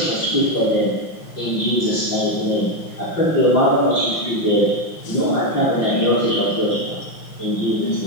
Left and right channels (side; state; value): right; late; 5.7 ms